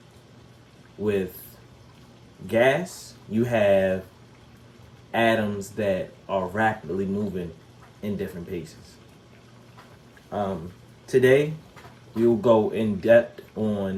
With gas, you have atoms that are rapidly moving in different paces. Today, we will go in depth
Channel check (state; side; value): identical; both; correlation 1.00